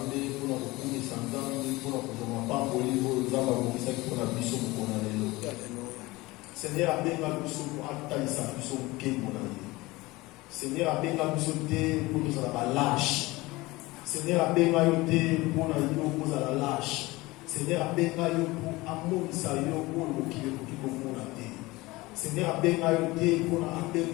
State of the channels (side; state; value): right; quieter; 21.0 dB